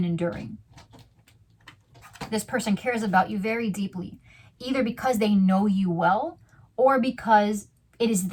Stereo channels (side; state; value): both; identical; correlation 1.00